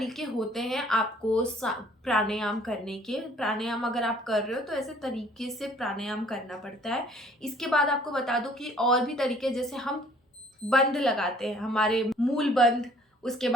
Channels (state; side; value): normal; both; correlation 0.57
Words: होते हैं आपको प्राणायाम करने के। प्राणायाम अगर आप कर रहे हो तो ऐसे तरीके से प्राणायाम करना पड़ता है। इसके बाद आपको बता दूं कि और भी तरीके, जैसे हम बंद लगाते हैं, हमारे मूल बंद, उसके